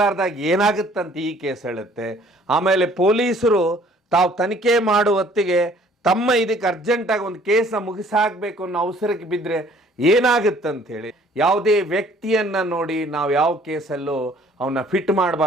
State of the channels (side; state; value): both; normal; correlation 0.57